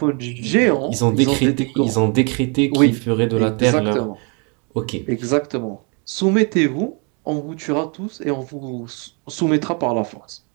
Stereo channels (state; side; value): quieter; left; 35.0 dB